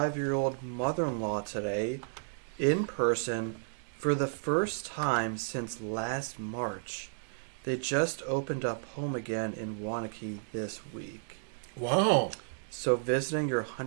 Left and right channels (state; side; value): silent; left; digital silence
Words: mother-in-law today in person for the first time since last March. They just opened up home again in Wanakee this week. Wow. So visiting your